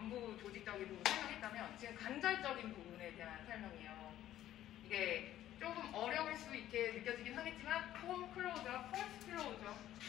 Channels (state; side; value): quieter; right; 12.8 dB